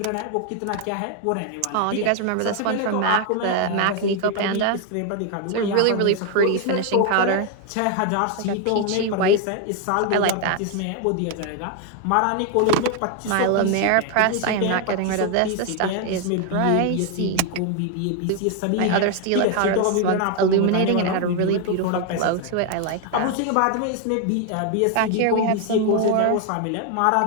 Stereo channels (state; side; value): different; both; correlation 0.00